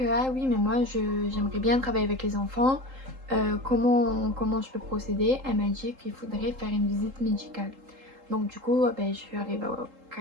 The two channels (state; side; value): late; left; 3.8 ms